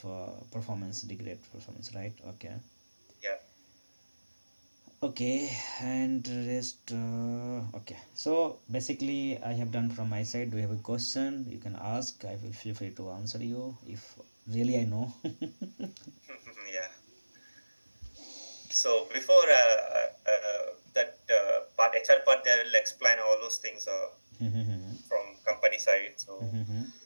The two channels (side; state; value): both; inverted; correlation -1.00